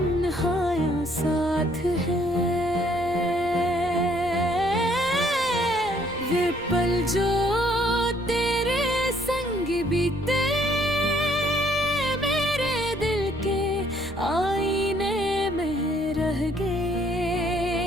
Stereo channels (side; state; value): right; noise; rumble, 18 dB below the sound